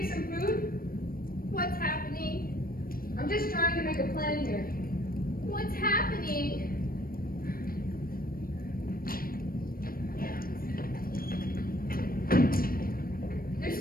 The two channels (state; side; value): late; right; 0.42 ms